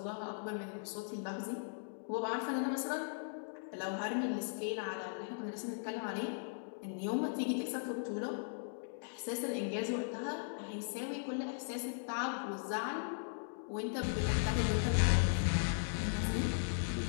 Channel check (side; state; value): right; silent; digital silence